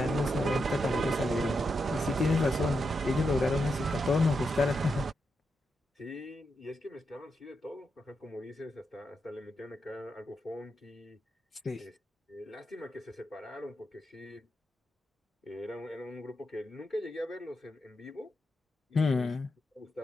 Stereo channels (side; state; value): both; normal; correlation 0.84